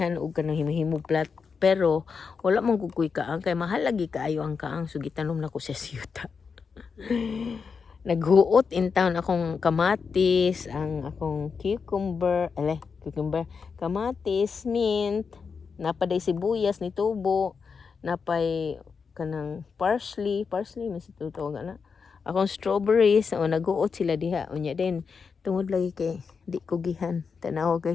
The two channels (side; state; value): right; quieter; 5.5 dB